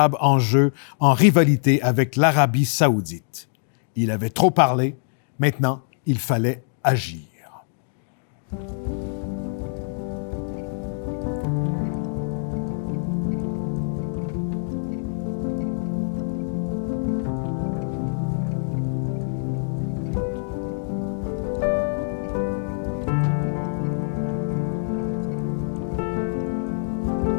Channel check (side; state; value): right; silent; digital silence